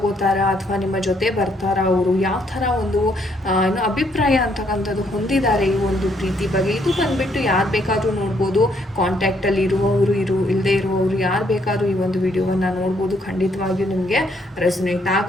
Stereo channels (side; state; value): both; normal; correlation 0.70